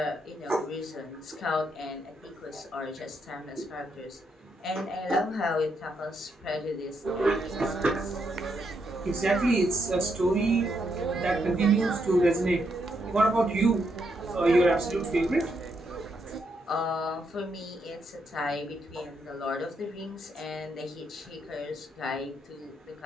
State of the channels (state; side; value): normal; both; correlation 0.78